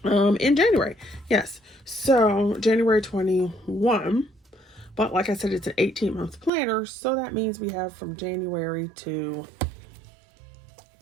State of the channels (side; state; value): left; drops out; at 6.5 s